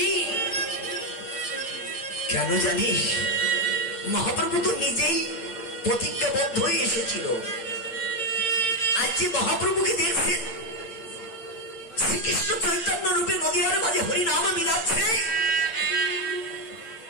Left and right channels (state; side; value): late; right; 8.9 ms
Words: কেন জানিস? মহাপ্রভু তো নিজেই প্রতিজ্ঞাবদ্ধ হয়ে এসেছিল। আজ যে মহাপ্রভুকে দেখছেন শ্রীকৃষ্ণ চৈতন্য রূপে নদীয়ার মাঝে হরিনাম মিলাচ্ছে,